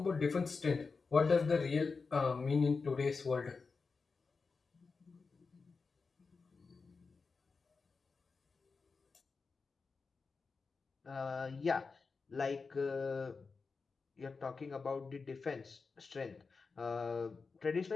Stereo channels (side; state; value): right; quieter; 4.6 dB